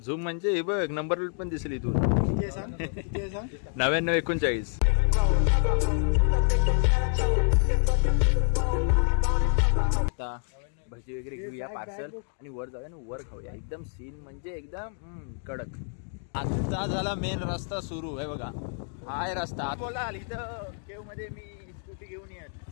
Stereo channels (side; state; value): right; silent; 59 dB below the other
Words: झूम म्हणजे हे बघ नंबर प्लेट पण दिसली इथून. 9939. आता भजी वगैरे घेऊया पार्सल आणि वर जाऊया आणि वर खाऊया. एकदम सीन म्हणजे एकदम कडक. आता झाला मेन रस्ता सुरू. आहे बघा हाय रस्ता. बोलाल इथं केव मध्ये मी स्कूटी घेऊन येत